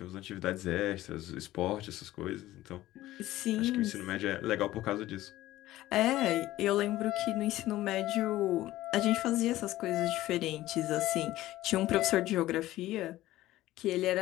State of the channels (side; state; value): right; quieter; 15.8 dB